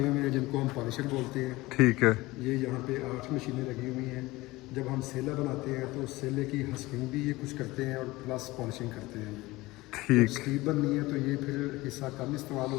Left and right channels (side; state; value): right; quieter; 20.0 dB